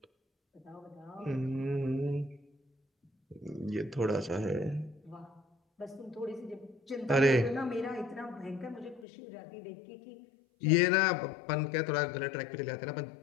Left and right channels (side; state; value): right; drops out; at 9.1 s